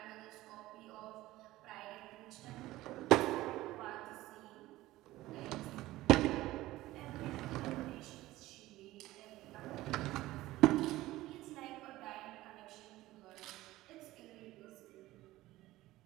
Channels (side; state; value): left; quieter; 17.0 dB